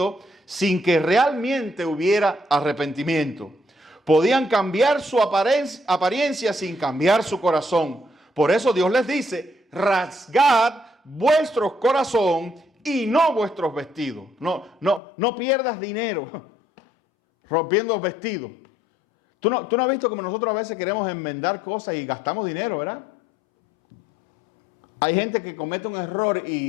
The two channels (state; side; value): drops out; right; at 15.0 s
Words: sin que realmente hubiera arrepentimiento. Podían cambiar su apariencia sin cambiar su corazón. Por eso Dios les dice, rasgad vuestro corazón y no vuestros vestidos. No pierdas dinero rompiendo vestidos. ¿Tú no has visto como nosotros a veces queremos enmendar cosas y gastamos dinero, ¿verdad? Hay gente que comete un error